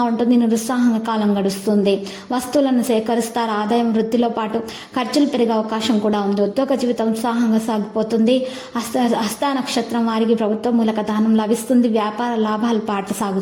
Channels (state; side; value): identical; both; correlation 1.00